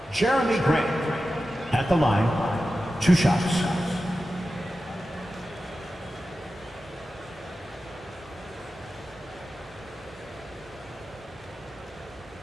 Jeremy Grant at the line, 2 shots.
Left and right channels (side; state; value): both; normal; correlation 0.93